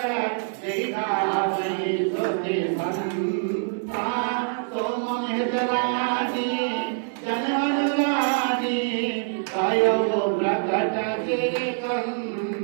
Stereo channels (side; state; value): left; silent; 62 dB below the other